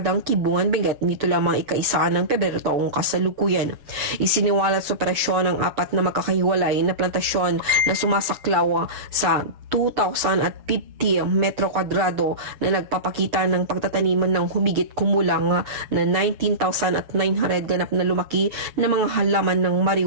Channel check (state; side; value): late; left; 7.1 ms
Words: Kibungan, Benguet nito lamang ika-1 ng Pebrero taong kasalukuyan. Isiniwalat sa operasyon ang 4 na magkakahiwalay na plantasyon na sumasaklaw sa 2,050 metro kwadrado na nagpapakita ng pagtataniman ng humigit kumulang na 19,900 ganap na lumaki na mga halaman ng